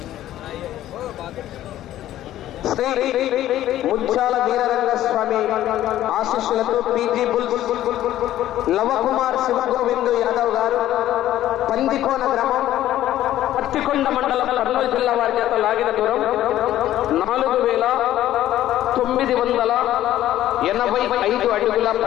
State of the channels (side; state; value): right; quieter; 13.2 dB